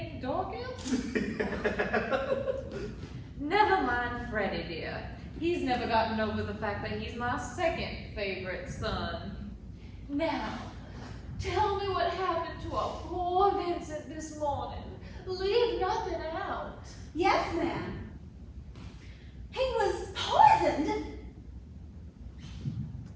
Dawkins? Never mind Freddie, dear. He's never gotten over the fact that he's my second favorite son. Now, tell me what happened to our poor Vincent this morning. Leave nothing out. Yes, ma'am. He was poisoned.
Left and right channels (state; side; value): identical; both; correlation 1.00